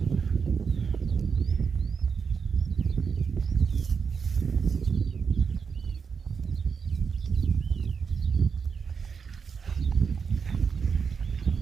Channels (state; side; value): quieter; left; 5.9 dB